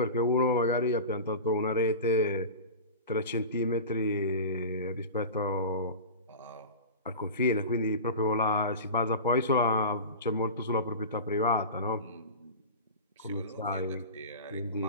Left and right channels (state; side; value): inverted; both; correlation -0.31